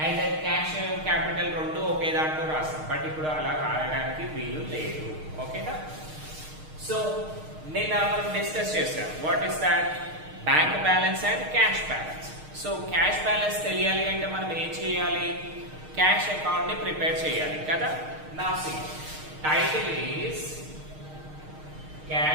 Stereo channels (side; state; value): left; late; 6.5 ms